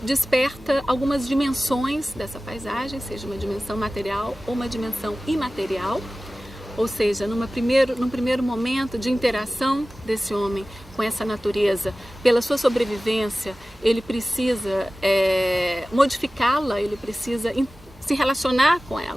desperta algumas dimensões dessa paisagem, seja uma dimensão material ou uma dimensão imaterial. Ou seja, num primeiro momento de interação desse homem com essa natureza, pela sua sobrevivência, ele precisa modificá-la, ele precisa se relacionar com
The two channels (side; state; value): both; normal; correlation 0.96